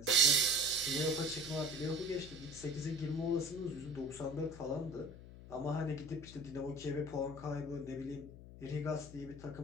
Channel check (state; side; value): noise; left; hum, 15 dB below the sound